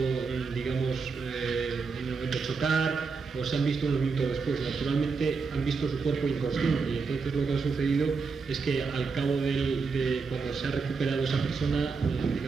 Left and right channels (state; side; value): quieter; left; 4.8 dB